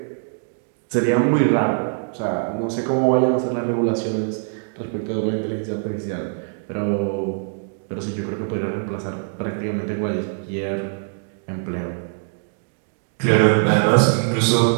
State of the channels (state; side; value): silent; left; digital silence